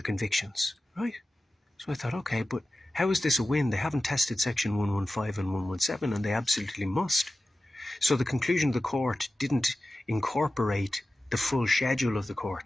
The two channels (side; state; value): both; normal; correlation 0.95